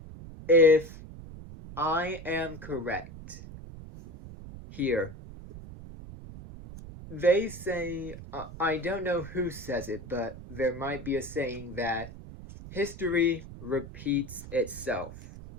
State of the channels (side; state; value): right; noise; rumble, 14 dB below the sound